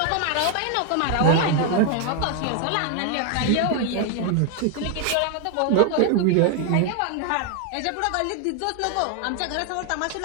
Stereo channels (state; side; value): different; both; correlation 0.00